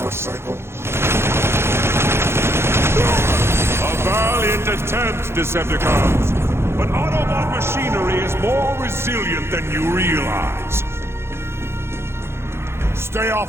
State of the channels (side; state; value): left; late; 0.12 ms